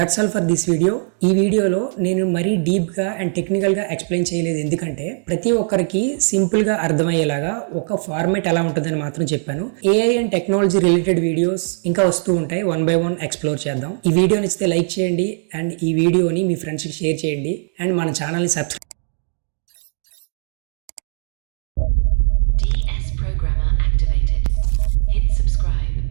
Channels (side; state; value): left; silent; digital silence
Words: all for this video. ఈ వీడియోలో నేను మరీ డీప్గా అండ్ టెక్నికల్గా ఎక్స్ప్లెయిన్ చేయలేదు, ఎందుకంటే ప్రతి ఒక్కరికి సింపుల్గా అర్థమయ్యేలాగా ఒక ఫార్మేట్ ఎలా ఉంటుందని మాత్రం చెప్పాను. AI and technology related videos ఇంకా వస్తూ ఉంటాయి. 1 by 1 ఎక్స్ప్లోర్ చేద్దాం. ఈ వీడియో నచ్చితే లైక్ చేయండి అండ్ ఈ వీడియోని మీ ఫ్రెండ్స్కి షేర్ చేయండి అండ్ మన ఛానల్ని సబ్స్క్రైబ్